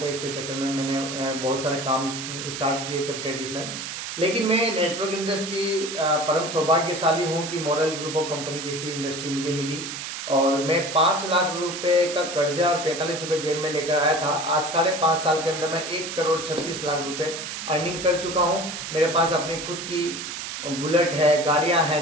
हैं। इसके चक्कर में मैंने बहुत सारे काम स्टार्ट किए थे ट्रेडिशनल, लेकिन मैं नेटवर्क इंडस्ट्री परम सौभाग्यशाली हूँ कि मॉडल ग्रुप ऑफ कंपनी जैसी इंडस्ट्री मुझे मिली, और मैं 5 लाख रुपए का कर्जा और 45 रुपए जेब में लेकर आया था। आज 5.5 साल के अंदर मैं 1 करोड़ 36 लाख रुपए अर्निंग कर चुका हूँ। मेरे पास अपनी खुद की बुलेट है, गाड़ियां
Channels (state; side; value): noise; right; hiss, 7 dB below the sound